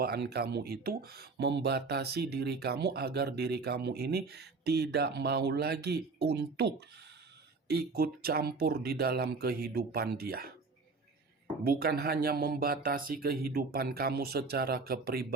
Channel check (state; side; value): quieter; left; 4.2 dB